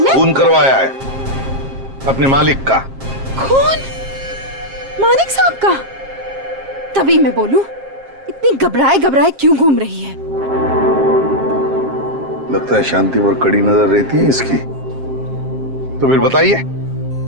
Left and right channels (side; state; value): left; late; 7.5 ms